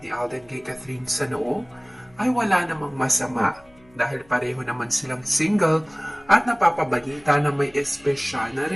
ni Alden kay Catherine sa noo, ay wala namang masama dahil pareho naman silang single at napapabalita na may espesyal na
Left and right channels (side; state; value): left; noise; hum, 29 dB below the sound